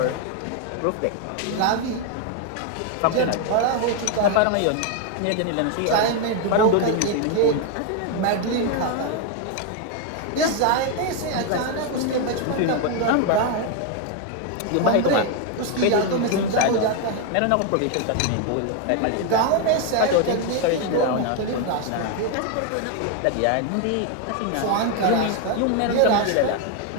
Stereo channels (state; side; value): different; both; correlation 0.01